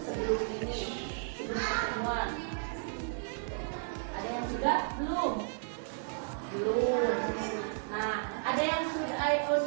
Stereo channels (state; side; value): silent; left; digital silence